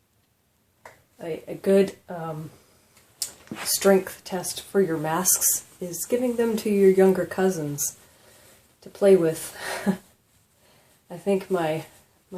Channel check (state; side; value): identical; both; correlation 1.00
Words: a good strength test for your masks is giving them to your younger cousins to play with. I think my